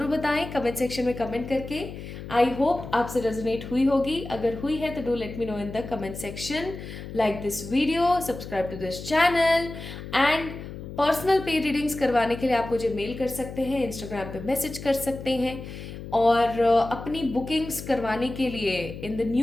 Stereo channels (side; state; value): left; noise; hum, 11 dB below the sound